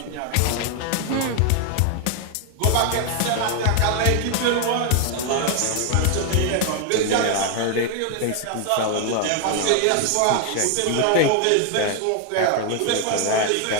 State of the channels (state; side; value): different; both; correlation 0.00